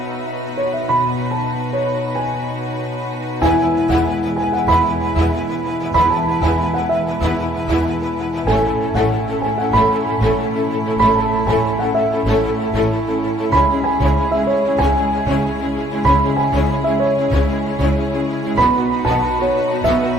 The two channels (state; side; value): normal; both; correlation 0.67